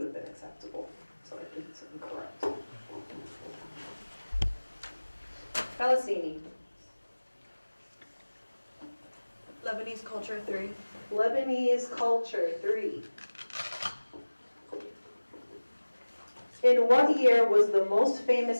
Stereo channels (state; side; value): inverted; both; correlation -1.00